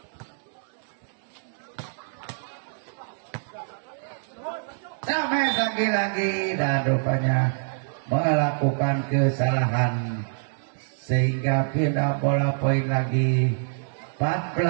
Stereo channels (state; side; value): silent; left; digital silence